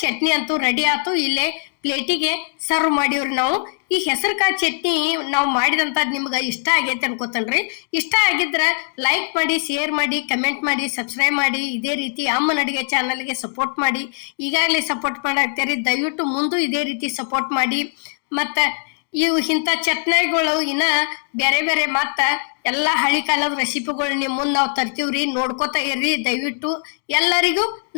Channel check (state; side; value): silent; right; digital silence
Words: ಚಟ್ನಿ ಅಂತೂ ರೆಡಿ ಆಯ್ತು. ಇಲ್ಲೇ ಪ್ಲೇಟಿಗೆ ಸರ್ವ್ ಮಾಡಿವ್ರಿ ನಾವು. ಈ ಹೆಸರು ಕಾಳು ಚಟ್ನಿ ನಾವು ಮಾಡಿದಂಥದ್ದು ನಿಮ್ಗೆ ಇಷ್ಟ ಆಗೈತೆ ಅನ್ಕೋತನ್ರಿ. ಇಷ್ಟ ಆಗಿದ್ರ ಲೈಕ್ ಮಾಡಿ, ಶೇರ್ ಮಾಡಿ, ಕಮೆಂಟ್ ಮಾಡಿ, ಸಬ್ಸ್ಕ್ರೈಬ್ ಮಾಡಿ. ಇದೇ ರೀತಿ ಅಮ್ಮನ ಅಡಿಗೆ ಚಾನಲ್ಗೆ ಸಪೋರ್ಟ್ ಮಾಡಿ. ಈಗಾಗಲೇ ಸಪೋರ್ಟ್ ಮಾಡಾಕ್ತೀರಿ, ದಯವಿಟ್ಟು ಮುಂದೆ ಇದೇ ರೀತಿ ಸಪೋರ್ಟ್ ಮಾಡಿ. ಮತ್ತು ಇವು ಇಂಥ ಚಟ್ನಿಗಳು ಇನ್ನ ಬೇರೆ ಬೇರೆ ಮತ್ತ ಎಲ್ಲಾ ಹಳಿ ಕಾಲದ ರೆಸಿಪಿಗಳು ನಿಮ್ ಮುಂದ್ ನಾವು ತರ್ತೀವ್ರಿ. ನೋಡ್ಕೋತಾ ಇರ್ರಿ ದಯವಿಟ್ಟು. ಎಲ್ಲರಿಗೂ